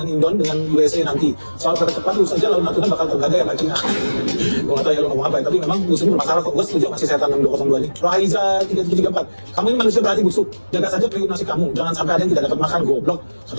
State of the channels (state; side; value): inverted; both; correlation -1.00